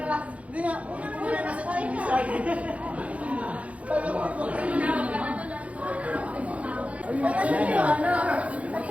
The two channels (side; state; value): left; late; 0.065 ms